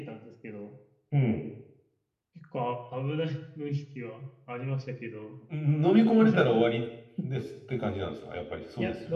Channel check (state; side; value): identical; both; correlation 1.00